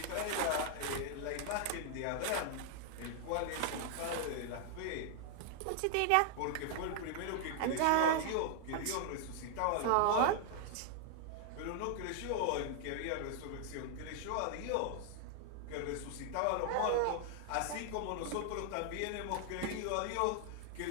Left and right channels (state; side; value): different; both; correlation 0.00